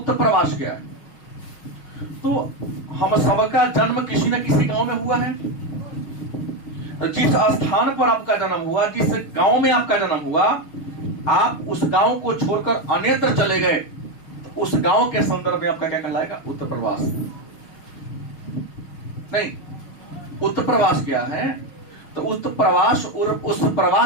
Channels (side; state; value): right; late; 6.0 ms